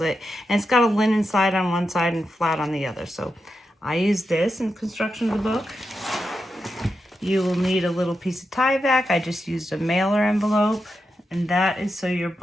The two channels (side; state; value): both; normal; correlation 0.87